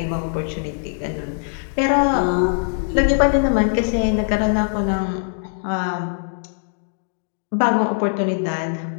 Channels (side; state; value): right; silent; digital silence